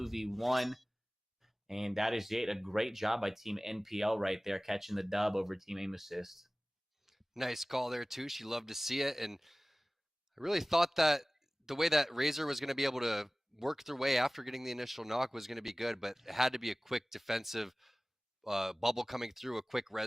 And that is it. A great job by Team NPL right there, catching the dub over Team Aim Assist. Nice call there, Touche. You love to see it. And I really thought that the way that Razor was going to be able to work their way after getting the initial knock was going to be good, but it had to be a quick defensive bubble coming through, a quick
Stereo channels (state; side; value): normal; both; correlation 0.98